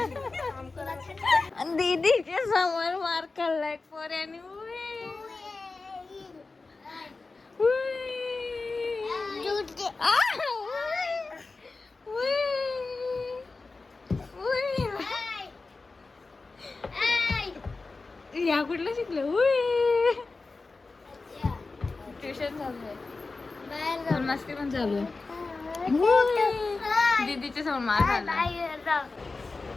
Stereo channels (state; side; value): quieter; right; 3.8 dB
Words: दीदीच्या समोर मार खाल्लाय पोऱ्याने. या कुठलं शिकलं? ट्युशन चालू आहे, मस्ती पण चालू आहे. दीदीच्या समोर मार खाल्ला.